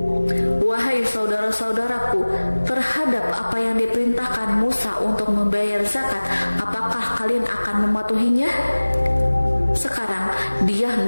"Wahai saudara-saudaraku, terhadap apa yang diperintahkan Musa untuk membayar zakat, apakah kalian akan mematuhinya? Sekarang dia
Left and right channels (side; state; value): both; inverted; correlation -1.00